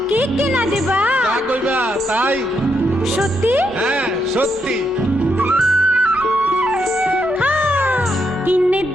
কি কিনা দিবা? যা কইবা তাই। সত্যি? হ্যাঁ সত্যি। কিনে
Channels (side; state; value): both; normal; correlation 0.79